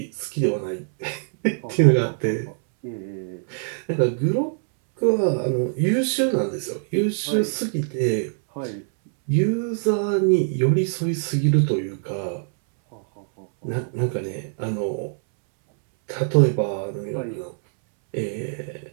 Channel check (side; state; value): left; silent; 63 dB below the other